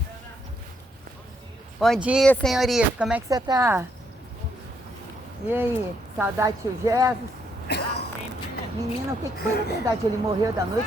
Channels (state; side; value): normal; both; correlation 0.74